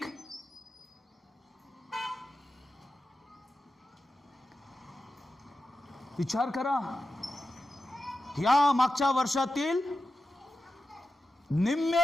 विचार करा, या मागच्या वर्षातील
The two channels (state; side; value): normal; both; correlation 0.91